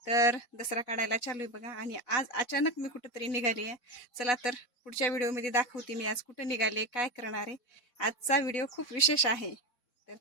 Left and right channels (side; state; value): right; late; 4.1 ms